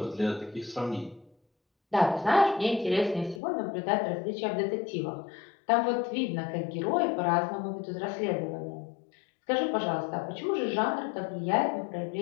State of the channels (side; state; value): right; drops out; at 3.4 s